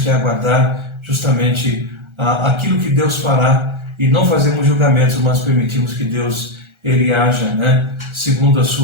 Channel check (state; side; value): late; left; 1.4 ms